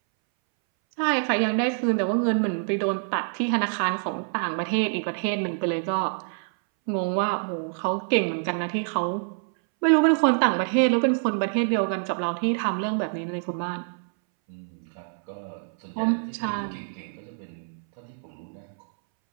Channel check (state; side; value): silent; left; 61 dB below the other